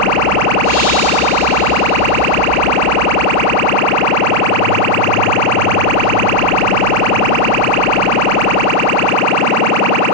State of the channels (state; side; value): late; right; 32 ms